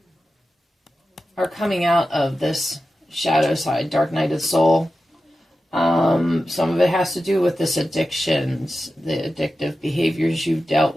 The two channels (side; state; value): both; normal; correlation 0.93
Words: coming out of this shadow side, dark night of the soul. Some of it has to do with this addictions, the addictive behaviors you've dealt